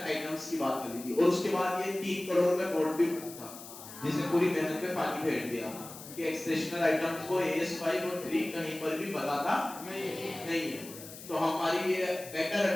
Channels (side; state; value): left; noise; hiss, 14 dB below the sound